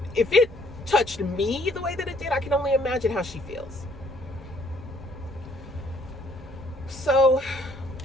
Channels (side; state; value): both; normal; correlation 0.63